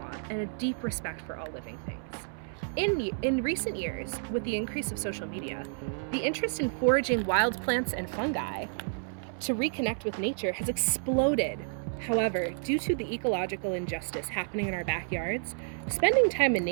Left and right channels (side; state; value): left; silent; 58 dB below the other